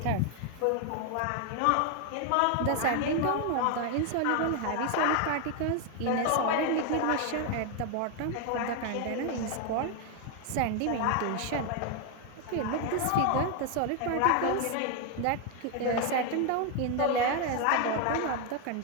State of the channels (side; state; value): both; different; correlation 0.01